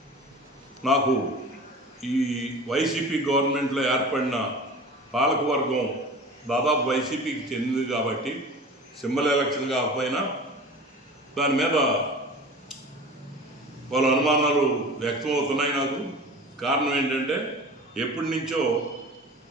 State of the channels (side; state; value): both; normal; correlation 0.38